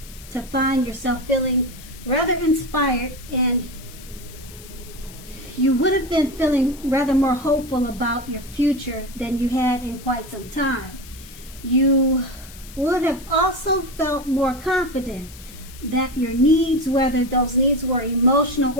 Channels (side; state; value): left; noise; hiss, 19 dB below the sound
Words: to find yourself feeling rather inspired, and you would have been feeling rather more hopeful about your future than you had in quite some time. You would have also felt more confident that your needs, whether those needs were emotional